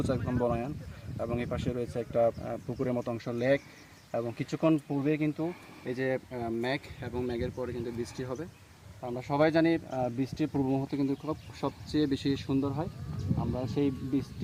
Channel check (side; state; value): both; identical; correlation 1.00